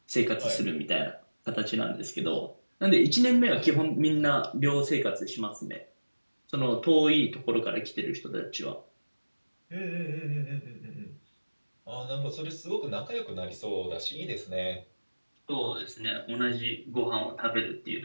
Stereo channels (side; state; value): both; inverted; correlation -1.00